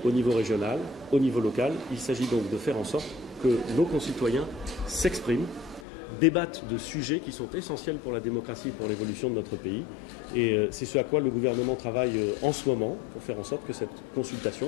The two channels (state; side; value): drops out; right; at 5.9 s